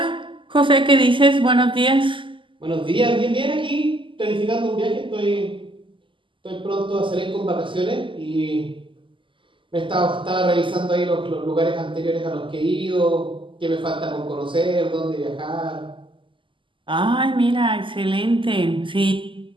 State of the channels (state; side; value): late; left; 0.25 ms